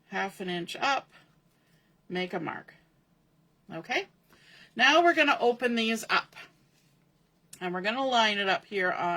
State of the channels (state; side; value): identical; both; correlation 1.00